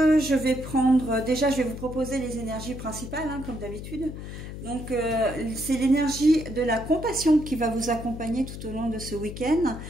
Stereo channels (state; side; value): noise; left; hum, 9 dB below the sound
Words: vais vous proposer les énergies principales, comme d'habitude. Donc, c'est l'énergie de la compassion qui va vous accompagner tout au long de ce week-end,